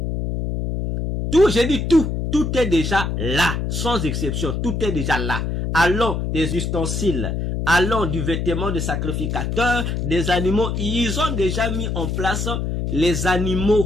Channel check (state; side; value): noise; left; hum, 2 dB below the sound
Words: Tout, j'ai dit tout est déjà là, sans exception, tout est déjà là. Allons des ustensiles, allons du vêtement de sacrificateur, des animaux, ils ont déjà mis en place les